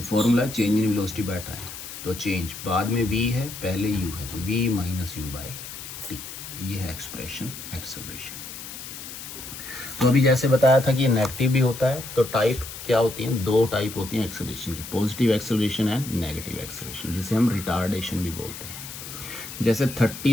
formula change in velocity by time. तो चेंज बाद में v है, पहले u है, तो v minus you by T. ये है एक्सप्रेशन एक्सेलरेशन। तो अभी जैसे बताया था कि नेगेटिव भी होता है, तो टाइप क्या होती हैं? 2 टाइप होती हैं एक्सेलरेशन की, positive acceleration and negative acceleration, जिसे हम रिटार्डेशन भी बोलते हैं। जैसे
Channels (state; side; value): noise; left; hiss, 11 dB below the sound